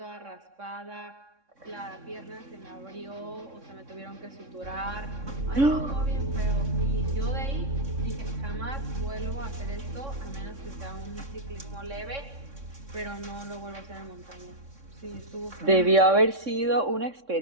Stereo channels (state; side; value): late; left; 3.6 ms